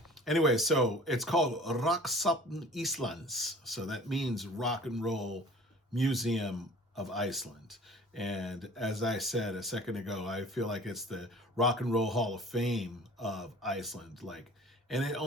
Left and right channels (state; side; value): normal; both; correlation 0.45